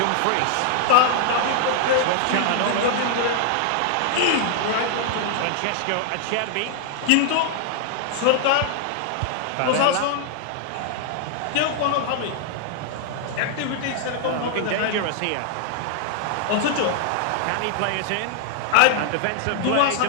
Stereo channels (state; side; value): different; both; correlation -0.01